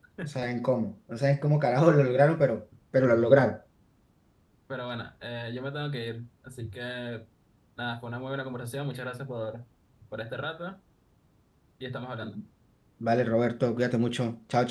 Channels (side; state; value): both; identical; correlation 1.00